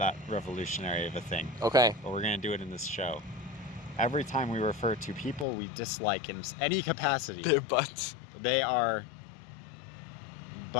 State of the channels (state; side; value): drops out; right; at 5.5 s